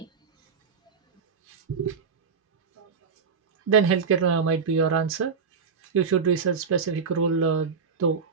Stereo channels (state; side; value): quieter; left; 5.7 dB